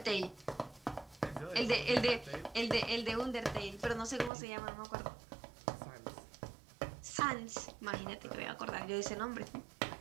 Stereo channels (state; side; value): drops out; left; at 4.3 s